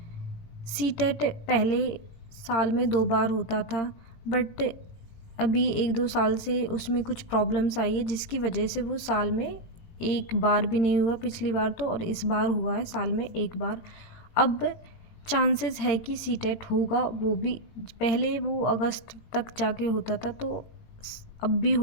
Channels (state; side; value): late; right; 17 ms